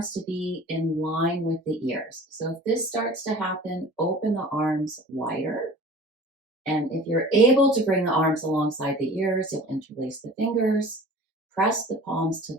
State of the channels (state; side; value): normal; both; correlation 0.43